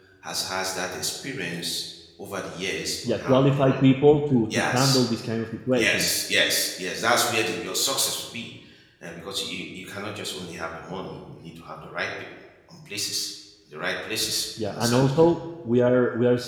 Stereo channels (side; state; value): both; identical; correlation 1.00